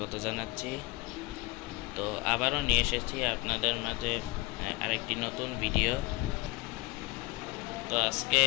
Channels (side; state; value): right; quieter; 23.1 dB